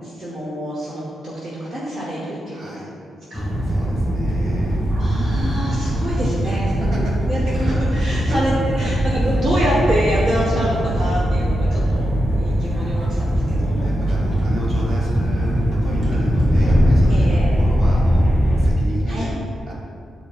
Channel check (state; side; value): normal; both; correlation 0.89